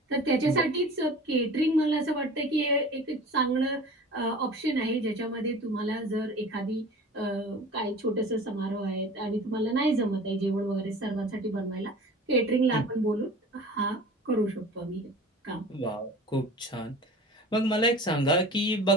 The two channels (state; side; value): normal; both; correlation 0.40